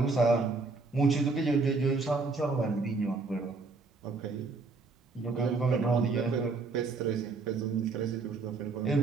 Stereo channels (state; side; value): quieter; left; 4.0 dB